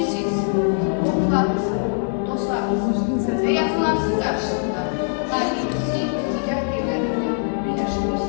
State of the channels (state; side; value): silent; right; digital silence